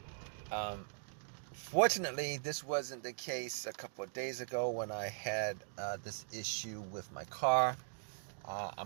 um, fortunately this wasn't the case a couple of days ago when I had this issue with my car.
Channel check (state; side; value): silent; left; digital silence